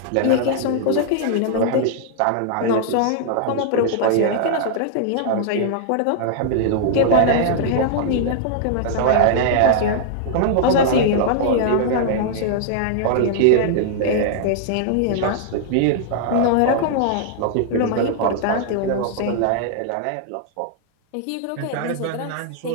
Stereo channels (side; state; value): both; different; correlation -0.01